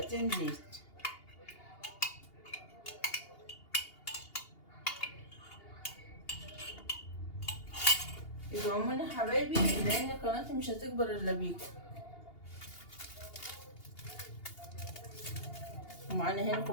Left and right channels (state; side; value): late; right; 2.8 ms